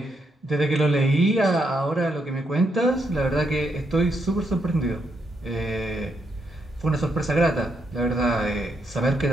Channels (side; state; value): both; normal; correlation 0.78